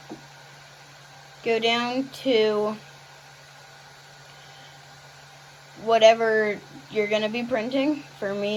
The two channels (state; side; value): identical; both; correlation 1.00